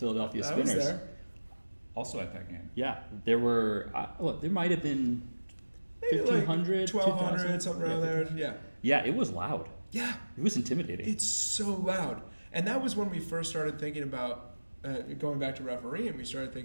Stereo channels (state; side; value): inverted; both; correlation -1.00